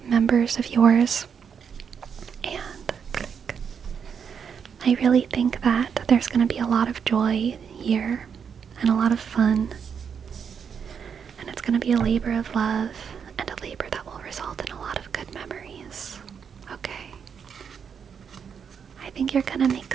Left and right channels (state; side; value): quieter; left; 7.0 dB